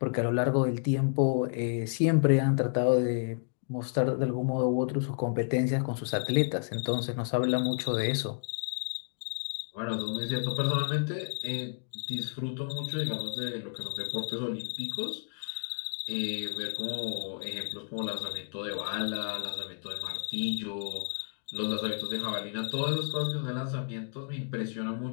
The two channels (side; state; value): right; silent; digital silence